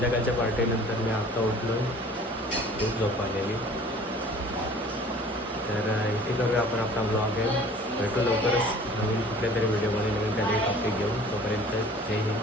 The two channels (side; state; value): both; normal; correlation 0.48